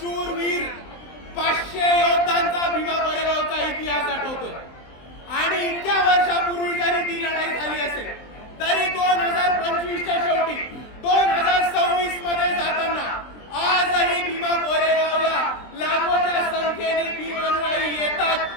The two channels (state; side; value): late; right; 23 ms